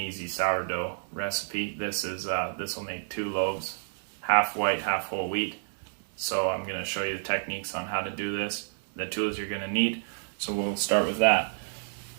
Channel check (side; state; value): left; silent; digital silence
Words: sourdough recipe. This will make 2 loaves, half white, half whole wheat. So I'm going to show you the techniques on how to do this, the tools you're going to need. So we'll start with that.